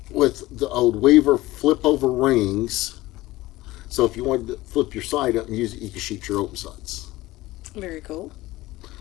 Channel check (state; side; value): quieter; right; 18.2 dB